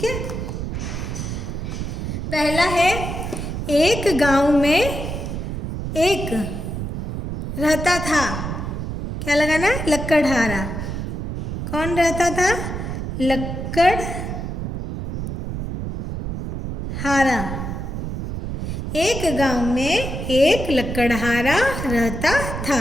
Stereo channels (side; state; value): right; noise; rumble, 5 dB below the sound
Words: है, पहला है एक गांव में एक रहता था। क्या लगाना? लकड़हारा। कौन रहता था? लकड़हारा। एक गांव में एक लकड़हारा रहता था।